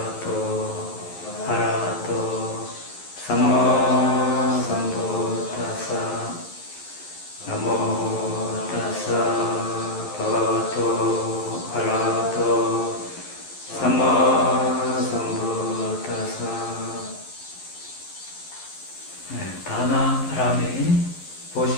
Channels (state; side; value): late; right; 11 ms